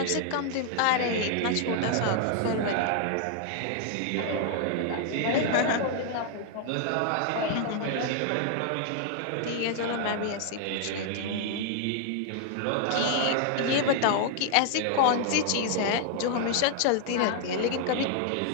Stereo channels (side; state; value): both; different; correlation 0.00